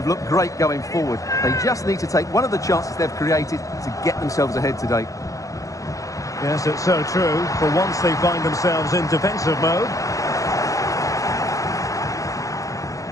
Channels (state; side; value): late; right; 0.16 ms